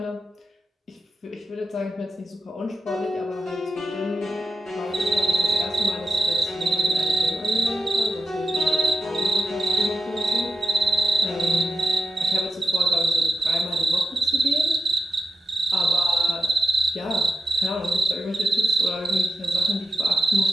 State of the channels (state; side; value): normal; both; correlation 0.89